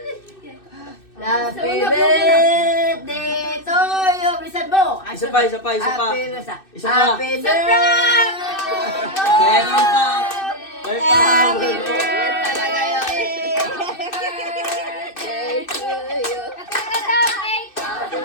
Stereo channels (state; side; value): late; right; 2.6 ms